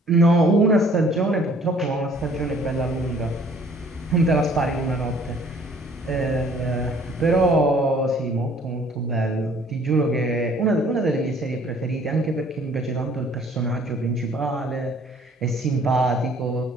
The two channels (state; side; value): normal; both; correlation 0.57